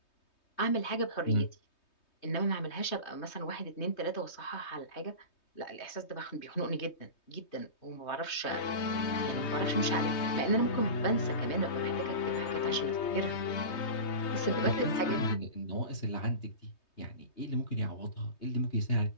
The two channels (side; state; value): right; late; 3.2 ms